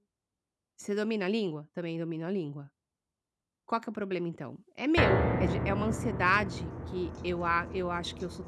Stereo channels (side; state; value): both; identical; correlation 1.00